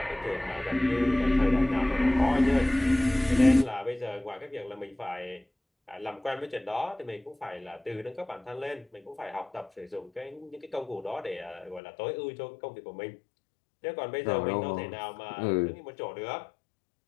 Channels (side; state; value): right; drops out; at 11.8 s